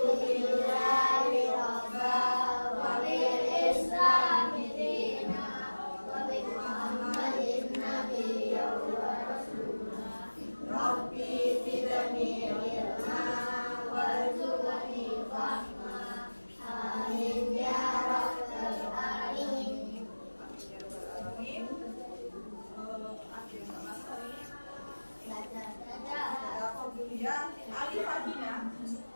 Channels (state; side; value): inverted; both; correlation -1.00